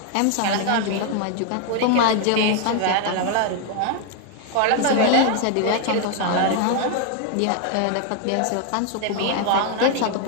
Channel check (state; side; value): different; both; correlation 0.01